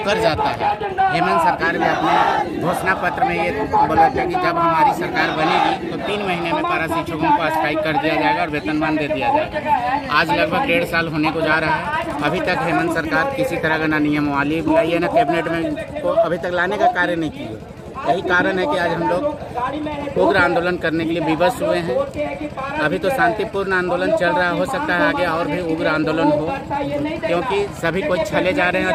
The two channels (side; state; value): both; identical; correlation 1.00